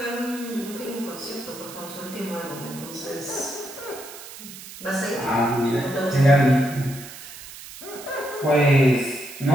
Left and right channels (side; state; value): right; noise; hiss, 14 dB below the sound